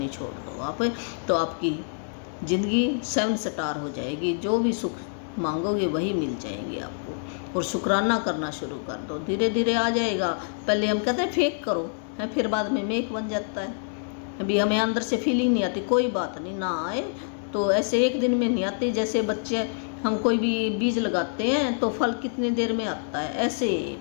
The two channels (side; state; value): right; silent; digital silence